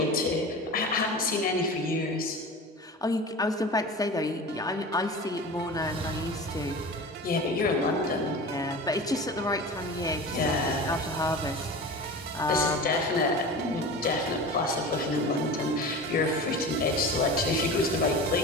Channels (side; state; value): both; normal; correlation 0.33